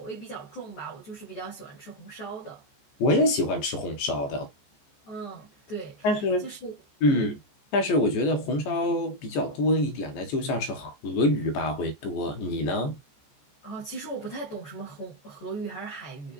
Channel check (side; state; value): right; late; 14 ms